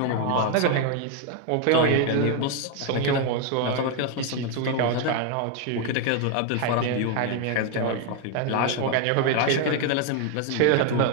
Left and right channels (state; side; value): different; both; correlation 0.01